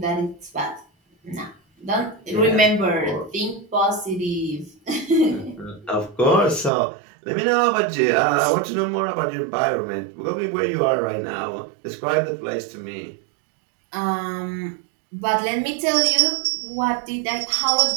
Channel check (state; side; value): drops out; left; at 6.7 s